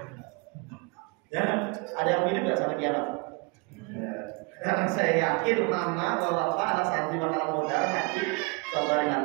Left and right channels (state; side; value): quieter; left; 29.7 dB